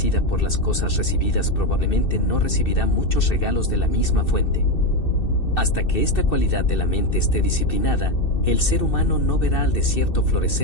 por las cosas recibidas probablemente no recibirá muchos regalos de la misma fuente. Hasta que esta cualidad de la mente esté disciplinada, el ser humano no verá al desierto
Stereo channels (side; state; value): right; late; 2.6 ms